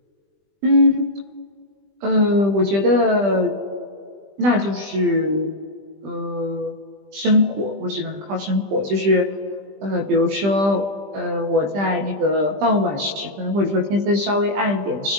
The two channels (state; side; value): late; left; 20 ms